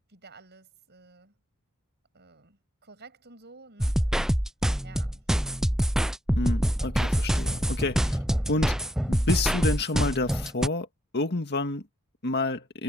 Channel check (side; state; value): both; normal; correlation 0.76